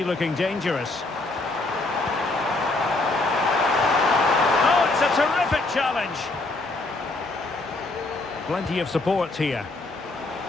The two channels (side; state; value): right; quieter; 3.1 dB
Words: looking dangerous. Oh, it's a terrific challenge. Plenty of support here.